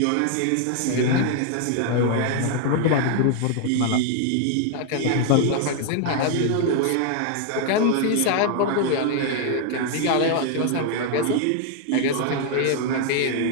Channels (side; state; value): both; different; correlation 0.00